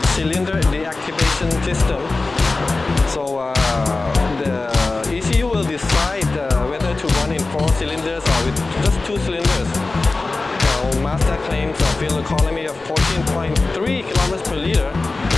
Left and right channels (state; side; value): quieter; right; 3.5 dB